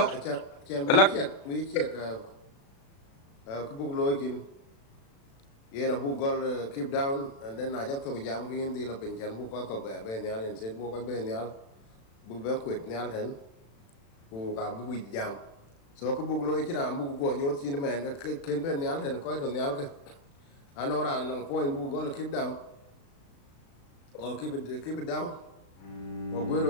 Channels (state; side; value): late; right; 36 ms